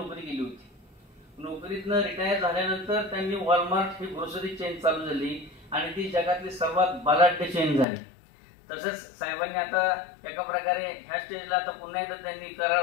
केली होती. नोकरीतनं रिटायर झाल्यानंतर त्यांनी वॉलमार्ट ही ग्रोसरी चेन चालू झाली आणि ती जगातली सर्वात बलाढ्य चेन झाली. तसंच साहेबांनी आता एका प्रकारे ह्या स्टेजला आता पुन्हा एकदा त्यांनी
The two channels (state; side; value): drops out; right; at 7.9 s